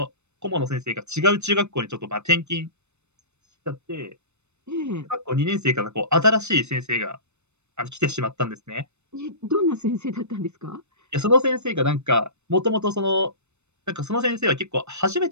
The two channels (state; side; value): late; left; 0.82 ms